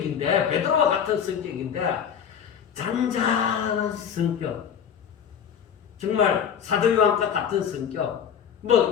베드로와 같은 성격인데 잔잔한 성격, 정말 사도 요한과 같은 성격,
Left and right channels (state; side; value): quieter; right; 8.1 dB